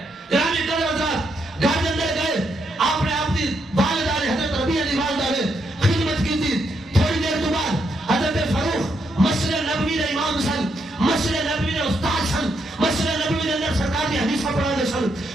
گرامی قدر حضرات گھر کے اندر گئے، آپ نے اپنی والدہ نے حضرت ربیعہ دی والدہ نے خدمت کی تھی. تھوڑی دیر کے بعد حضرت فاروق مسجد نبوی دے امام سن، مسجد نبوی دے استاد سن، مسجد نبوی دے اندر سرکار کی حدیثاں پڑھا دے سن،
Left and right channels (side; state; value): both; normal; correlation 0.79